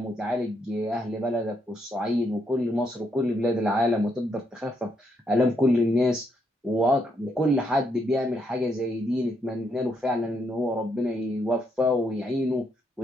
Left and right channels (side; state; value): both; normal; correlation 0.76